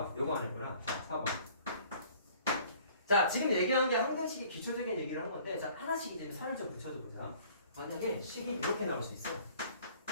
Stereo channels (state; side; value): inverted; both; correlation -0.53